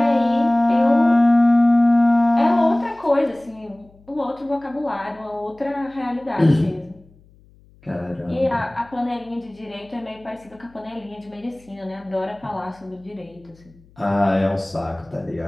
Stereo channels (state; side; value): noise; left; hum, 28 dB below the sound